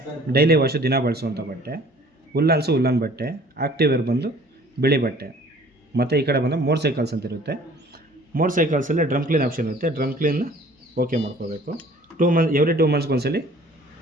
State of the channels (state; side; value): normal; both; correlation 0.52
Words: ಡೈಲಿ ವಾಶು, ದಿನ ಬಳಸುವಂಥ ಬಟ್ಟೆ. ಉಲ್ಲನ್ಸು, ಉಲ್ಲನ್ ಬಟ್ಟೆ. ಆಕ್ಟಿವ್ ವೇರ್ ಬಂದು ಬಿಳಿ ಬಟ್ಟೆ. ಮತ್ತು ಈ ಕಡೆ ಬಂದು ಮೋಟರ್ ಸೈಕಲ್ಸ್ ಅಂತ ಇರುತ್ತೆ. ಮೋಟರ್ ಸೈಕಲ್ಸಲ್ಲಿ ಡ್ರಮ್ ಕ್ಲೀನ್ ಆಪ್ಷನ್ ಇರುತ್ತೆ. ಡ್ರಮ್ ಕ್ಲೀನ್ ಓಕೆ ಮಾಡ್ಕೋಬೇಕು. ಎವ್ರಿ 2 ಮಂತ್ಸ್ಗೆ ಒಂದ್ಸಲಿ